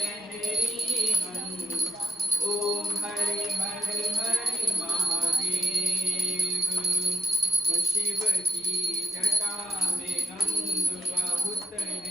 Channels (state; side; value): normal; both; correlation 0.75